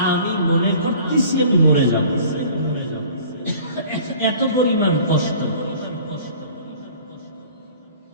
আমি মনে করতেছি আমি মরে যাব, এত পরিমাণ কষ্ট।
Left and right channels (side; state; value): both; inverted; correlation -0.48